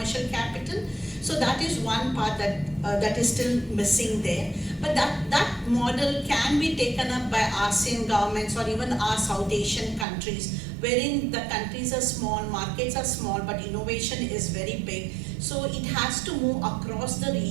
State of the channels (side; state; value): left; drops out; at 10.1 s